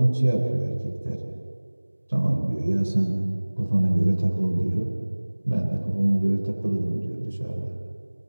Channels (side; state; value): both; inverted; correlation -1.00